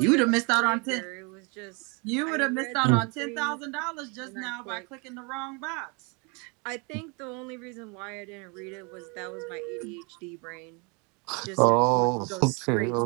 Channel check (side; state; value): left; quieter; 31.7 dB